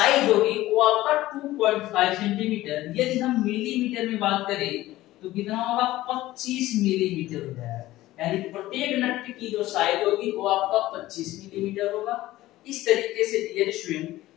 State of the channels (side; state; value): right; quieter; 16.4 dB